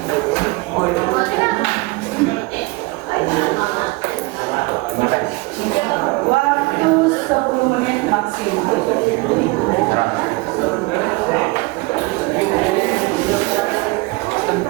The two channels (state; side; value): quieter; left; 24.0 dB